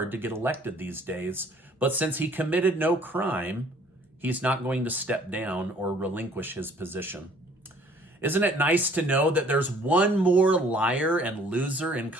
to get elected these days. But since he committed no crime, he's not going to step down or relinquish his position. Isn't it nice to know that there's one more liar and loser in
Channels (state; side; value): normal; both; correlation 0.57